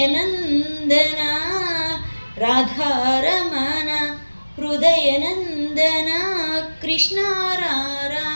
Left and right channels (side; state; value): both; inverted; correlation -1.00